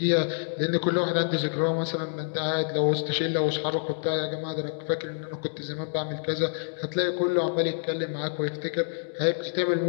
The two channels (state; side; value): silent; right; digital silence